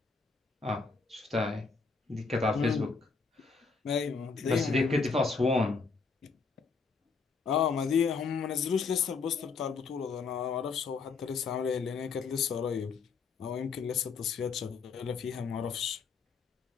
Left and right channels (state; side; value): quieter; right; 4.9 dB